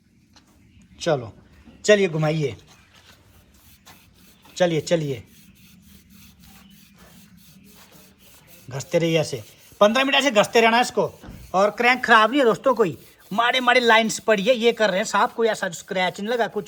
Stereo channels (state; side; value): identical; both; correlation 1.00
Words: चलो चलिए घुमाइए, चलिए चलिए, घसते रहिए ऐसे 15 मिनट ऐसे घसते रहना इसको। और क्रैंक खराब नहीं है दोस्तों, कोई माड़े माड़े लाइंस पड़ी है, ये कर रहे हैं साफ, कोई ऐसा स्क्रैच नहीं लगा,